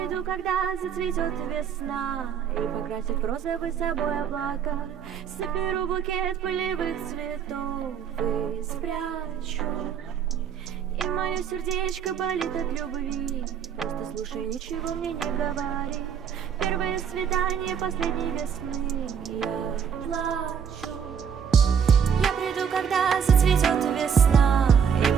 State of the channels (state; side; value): quieter; left; 7.5 dB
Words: когда зацветет весна, и покрасит розовый собой облака. Соберу букет полевых цветов и спрячу. И мое сердечко болит от любви. Просто слушай, ничего мне не говори. Первое свидание последней весны. Я плачу. Я приду, когда зацветет весна,